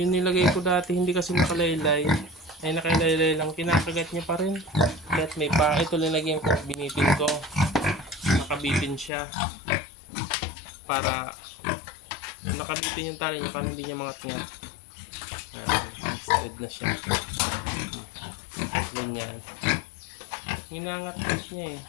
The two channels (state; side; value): drops out; right; at 9.1 s